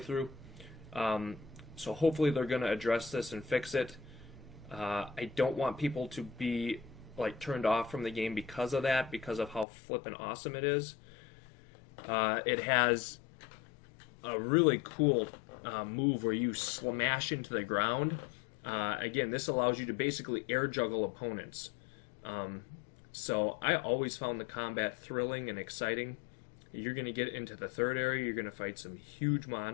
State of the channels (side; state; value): right; drops out; at 9.7 s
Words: So hopefully they're going to address this and fix it. I don't want people to be like turned off from the game because of that, because of how flippin' awesome it is. It has a really cool move where you smash into the ground. Again, this allows you to basically air juggle opponents. So I always found the combat thrilling and exciting. You're going to get into the third area. You're going to fight some huge